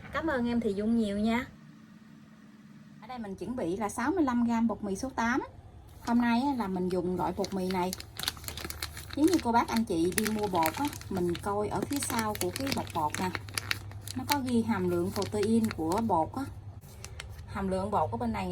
Cảm ơn em Thùy Dung nhiều nha. Ở đây mình chuẩn bị là 65g bột mì số 8. Hôm nay là mình dùng loại bột mì này. Nếu như cô bác anh chị đi mua bột á, mình coi ở phía sau của cái bọc bột nè, nó có ghi hàm lượng protein của bột á. Hàm lượng bột ở bên này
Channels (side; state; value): both; identical; correlation 1.00